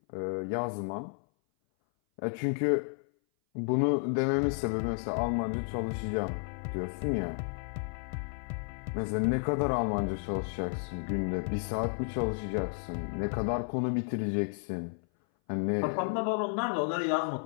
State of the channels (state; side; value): silent; right; 56 dB below the other